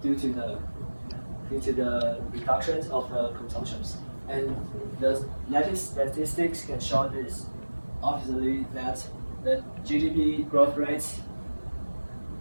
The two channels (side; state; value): both; inverted; correlation -1.00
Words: due to the reductions of the consumptions. And the latest statistics can show this. Obviously, that the GDP growth rate